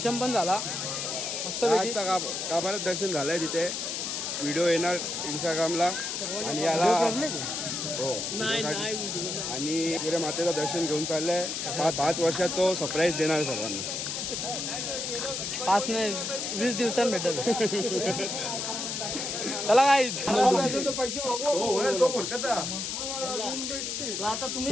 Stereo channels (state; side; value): noise; left; hiss, 3 dB below the sound